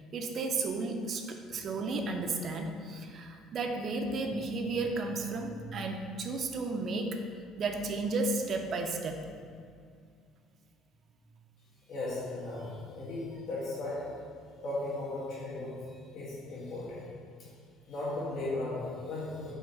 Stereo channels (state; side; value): normal; both; correlation 0.60